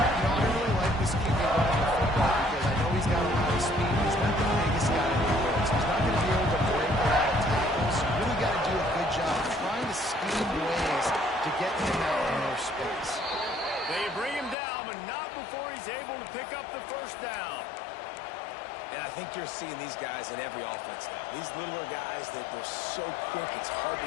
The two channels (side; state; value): right; drops out; at 14.6 s